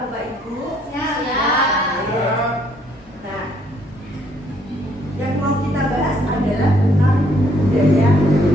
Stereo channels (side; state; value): both; normal; correlation 0.67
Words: Bapak Ibu? Siap. Nah, yang mau kita bahas adalah tentang budaya